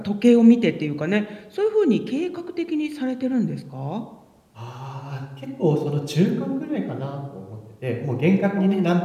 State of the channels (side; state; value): both; identical; correlation 1.00